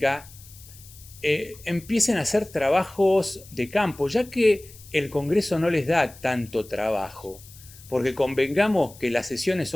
empiecen a hacer trabajos de campo, ya que el Congreso no les da tanto trabajo, porque convengamos que las sesiones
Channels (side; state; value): left; noise; hiss, 21 dB below the sound